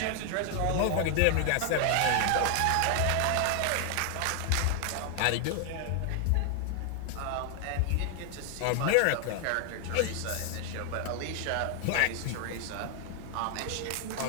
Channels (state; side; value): different; both; correlation 0.00